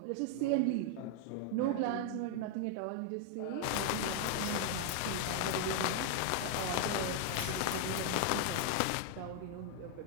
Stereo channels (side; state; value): both; different; correlation 0.00